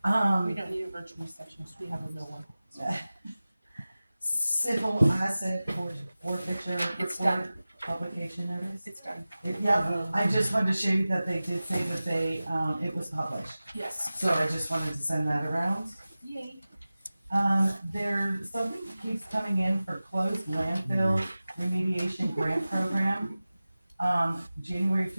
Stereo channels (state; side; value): inverted; both; correlation -0.96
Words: We don't need a virtual receptionist, we have a real one. Civil asset forfeiture It's report, done. publication notice. It's done. Yeah, I just wanted to show you that they did say that they, it was published, Yes. so I just wanted to send that around. Yay. Something keeps coming in for closed landfill remediation grant program. January